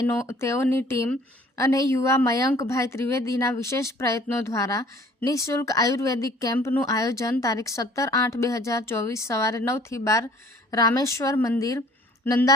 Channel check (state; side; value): normal; both; correlation 0.53